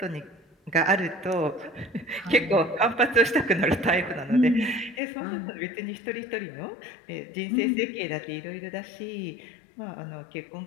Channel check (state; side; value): drops out; right; at 5.0 s